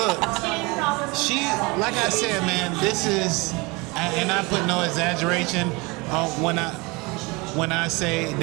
she, like I said, man, this is, and I put no exaggeration when I say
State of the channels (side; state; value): left; quieter; 25.9 dB